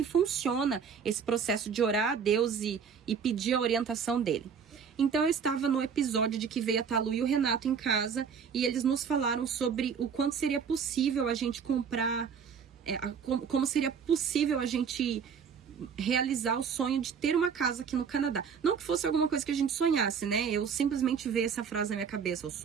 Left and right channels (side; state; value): left; quieter; 6.6 dB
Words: funciona esse processo de orar a Deus e pedir a orientação dele. Então eu estava no episódio de que veio a Talu e o Renato em casa e eles nos falaram sobre o quanto seria possível a gente comprar, como seria possível a gente realizar o sonho de ter uma casa aqui no Canadá. Não que fosse alguma coisa que a gente sonhasse, né? Eu simplesmente vi essa frase na minha cabeça, o